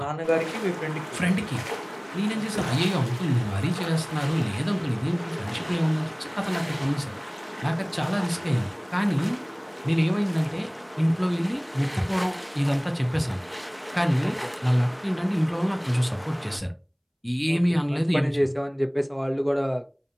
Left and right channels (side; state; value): both; identical; correlation 1.00